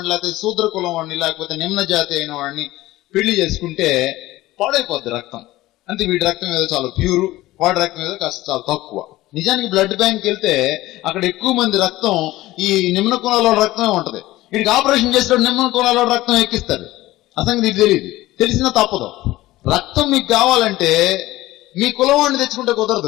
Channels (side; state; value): right; quieter; 17.3 dB